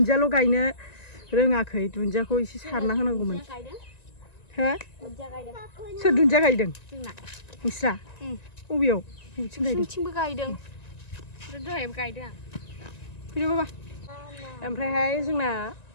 गायनो रोङाखै दुन्दियाखौ एसे सारना होनांगौमोन हो सोर दुन्दिया गायदों नोंस्रा बबेयाव बबेथिं गायदों दहायबो गायदों फैदो बाबा ओमफ्रायहाय जोंना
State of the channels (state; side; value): late; right; 1.9 ms